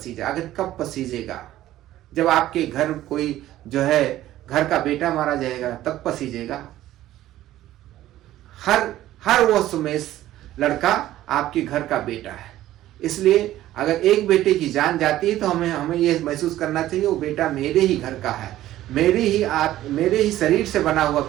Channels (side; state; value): left; quieter; 14.1 dB